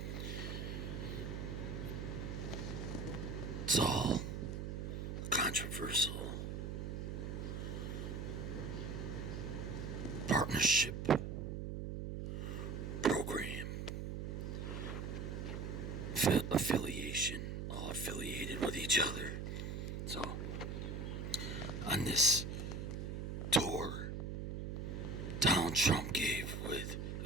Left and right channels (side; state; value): right; noise; hum, 4 dB below the sound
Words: It's all controversial partnership program, affiliation, all affiliated with each other. So, on this tour Donald Trump gave with